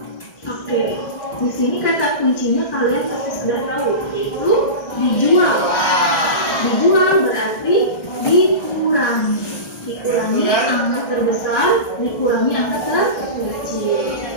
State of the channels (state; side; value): late; right; 1.6 ms